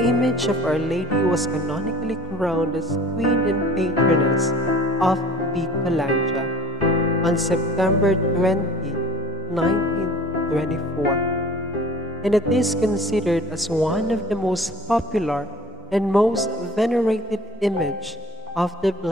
image of Our Lady was canonically crowned as Queen and Patroness of Bicolandia on September 20, 1924, and it is considered as one of the most popular and most venerated image of the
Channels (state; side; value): normal; both; correlation 0.45